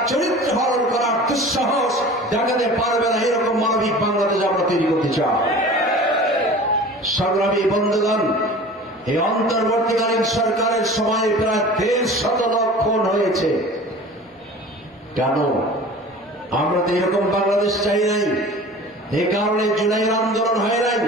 চরিত্র হরণ করার দুঃসাহস দেখাতে পারবে না। এরকম মানবিক বাংলাদেশ আমরা তৈরি করতে চাই। সংগ্রামী বন্ধুগণ, এই অন্তর্বর্তীকালীন সরকারের সময় প্রায় 150 লক্ষ খুন হয়েছে। কেন? আমরা তো এরকম বাংলাদেশ চাই নাই। এই কারণে জুলাইয়ের আন্দোলন হয় নাই,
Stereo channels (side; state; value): both; normal; correlation 0.40